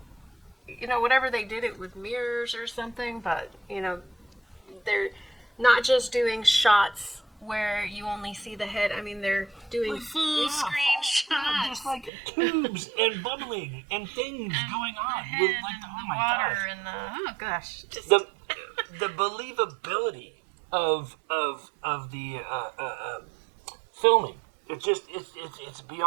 whatever they did it with mirrors or something, but they're not just doing shots where you only see the head. I mean, they're doing full screen shots. Just like tubes and bubbling and things going on with the water and the just the believability of the filming. It's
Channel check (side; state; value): left; drops out; at 12.1 s